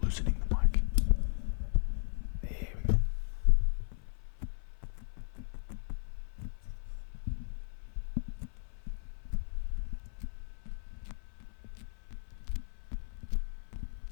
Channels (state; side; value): silent; right; 54 dB below the other